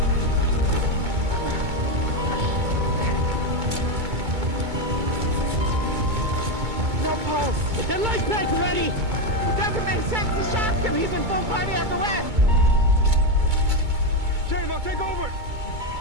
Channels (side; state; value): left; late; 2.2 ms